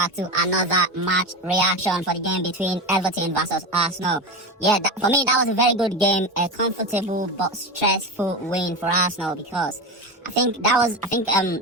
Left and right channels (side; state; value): both; normal; correlation 0.21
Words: to another match reaction for the game between Everton versus Arsenal. Yeah, for me, that was a very good game, a comfortable but stressful win for Arsenal because